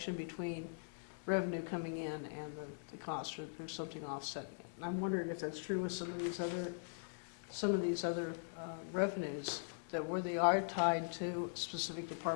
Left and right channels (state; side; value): silent; right; digital silence